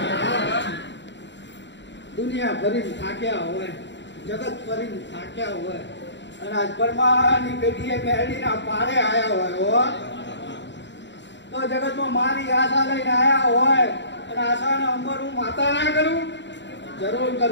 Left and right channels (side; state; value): right; late; 0.52 ms